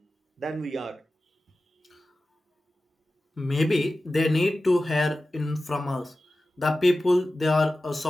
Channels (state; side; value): normal; both; correlation 0.95